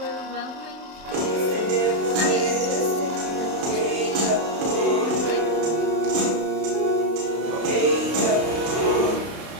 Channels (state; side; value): late; left; 32 ms